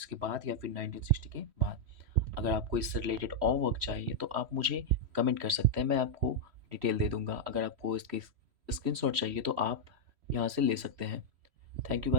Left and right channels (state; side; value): late; left; 3.1 ms